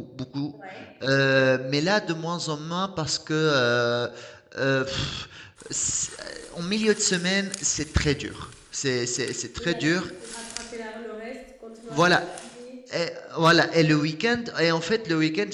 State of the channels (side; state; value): both; identical; correlation 1.00